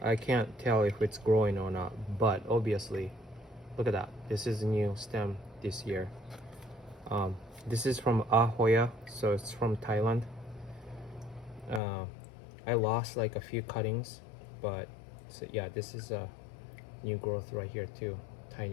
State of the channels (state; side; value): drops out; right; at 11.8 s